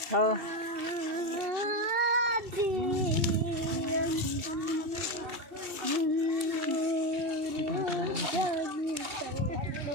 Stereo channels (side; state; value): left; late; 2.7 ms